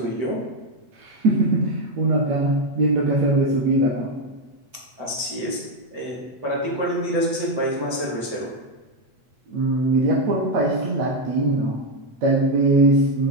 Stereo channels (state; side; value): late; left; 8.1 ms